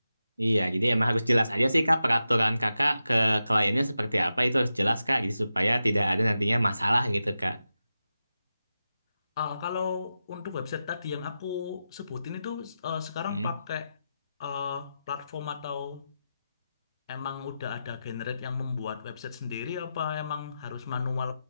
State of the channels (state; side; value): inverted; both; correlation -0.91